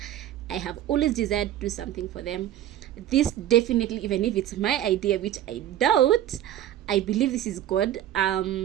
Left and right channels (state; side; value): quieter; left; 12.2 dB